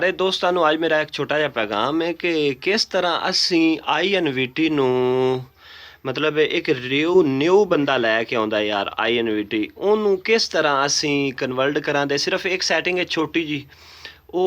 दोस्तों ਨੂੰ ਅੱਜ ਮੇਰਾ ਇੱਕ ਛੋਟਾ ਜਿਹਾ ਪੈਗਾਮ ਹੈ ਕਿ ਕਿਸ ਤਰ੍ਹਾਂ ਅਸੀਂ ਆਈਐਨਵੀਟੀ ਨੂੰ ਮਤਲਬ ਇੱਕ ਨਿਊ ਬੰਦਾ ਲੈ ਕੇ ਆਉਂਦਾ ਯਾਰ ਆਈਐਨਵੀਟੀ, ਉਹਨੂੰ ਕਿਸ ਤਰ੍ਹਾਂ ਅਸੀਂ ਕਨਵਰਟ ਕਰਾਂਦੇ। ਸਿਰਫ ਇੱਕ ਸੈਟਿੰਗ ਹੈ ਛੋਟੀ ਜੀ,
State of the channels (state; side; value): identical; both; correlation 1.00